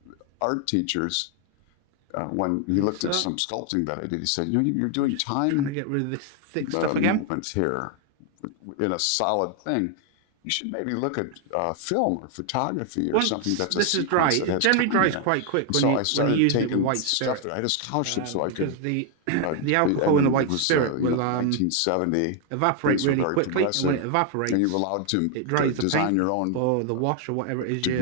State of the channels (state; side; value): different; both; correlation 0.01